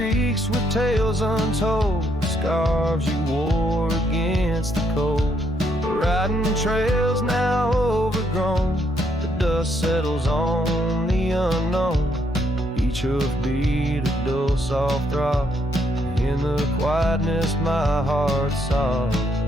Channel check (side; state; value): both; normal; correlation 0.73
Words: with tales untold, scarves you wore against the cold. Riding trails now overgrown, the dust settles on the unknown. Each hoofbeat a dull soft throb, in the quietness my heart sobs.